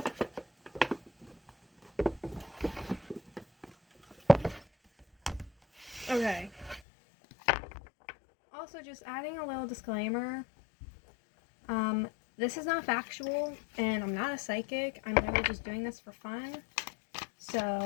Okay. Also, just adding a little disclaimer. This is not factual, and I'm not a psychic. I'm literally just doing this for fun.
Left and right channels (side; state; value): right; drops out; at 6.8 s